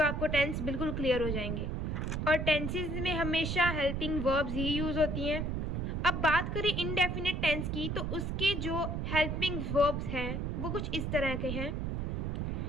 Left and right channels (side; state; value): right; noise; rumble, 1 dB below the sound